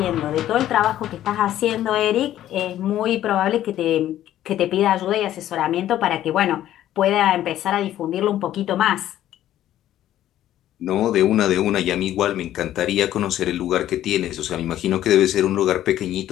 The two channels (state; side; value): quieter; right; 12.6 dB